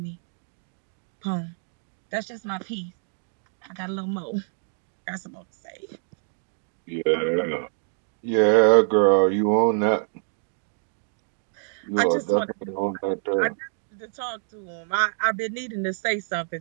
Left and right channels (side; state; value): left; silent; 61 dB below the other